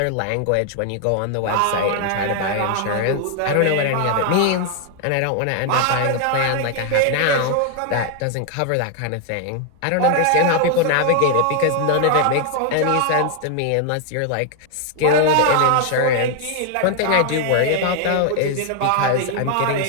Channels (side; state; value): both; different; correlation 0.00